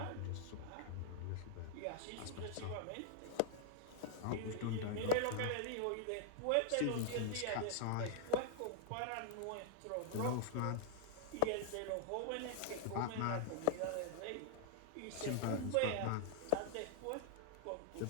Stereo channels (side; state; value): both; different; correlation -0.01